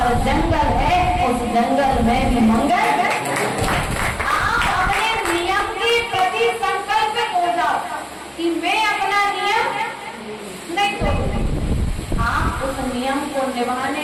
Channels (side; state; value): both; identical; correlation 1.00